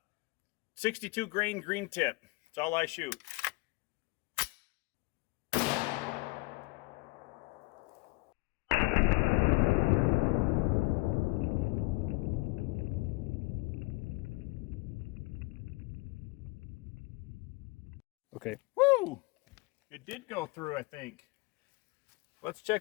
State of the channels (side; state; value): right; quieter; 23.2 dB